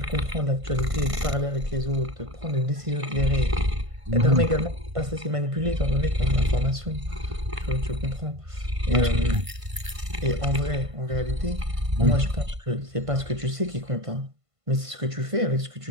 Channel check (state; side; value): late; left; 1.5 ms